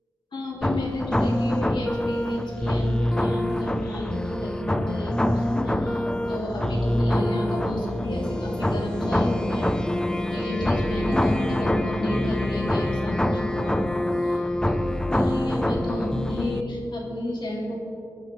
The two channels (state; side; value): normal; both; correlation 0.95